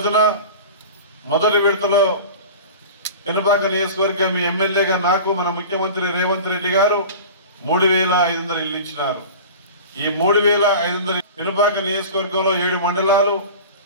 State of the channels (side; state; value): both; inverted; correlation -0.35